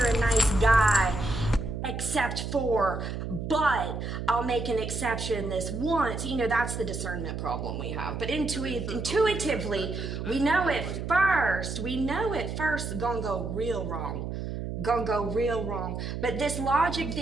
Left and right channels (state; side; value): noise; right; hum, 5 dB below the sound